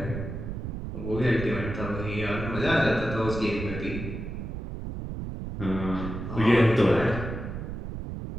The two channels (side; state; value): right; noise; rumble, 6 dB below the sound